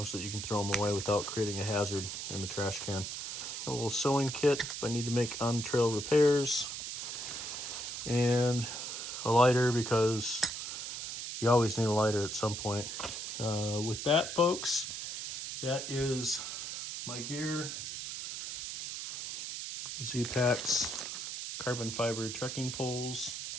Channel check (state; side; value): noise; right; hiss, 6 dB below the sound